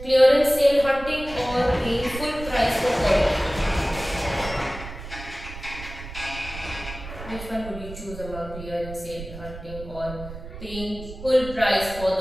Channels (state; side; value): noise; right; rumble, 12 dB below the sound